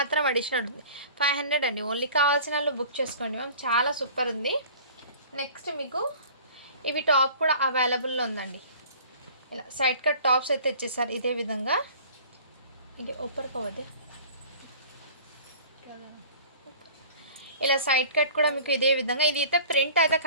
అడిషనల్ ఉంటుంది. 500 అండి. ఓన్లీ కావాల్సిన వాళ్ళు బుక్ చేసుకోండి మ్యామ్. చాలా సూపర్ ఉంది. నెక్స్ట్ మీకు ఇవి టాప్ కూడా అవైలబుల్లో ఉందండి. ఇలా సైడ్ కట్ టాప్స్ అయితే ఇచ్చేసారు ఇదే విధంగా. ఇది ఓపర్ కవదే ఇలా సైడ్ కట్ కూడా మీకు ఇదే విధంగా. ఇది అయితే ప్రింట్ అయితే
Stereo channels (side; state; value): both; inverted; correlation -0.45